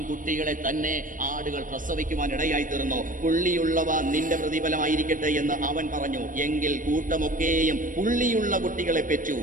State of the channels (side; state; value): left; late; 0.38 ms